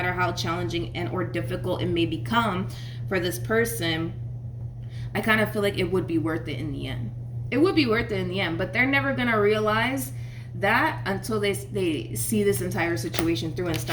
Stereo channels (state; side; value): identical; both; correlation 1.00